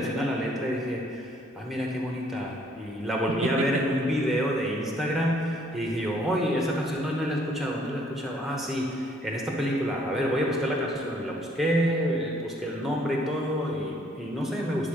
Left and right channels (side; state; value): both; normal; correlation 0.64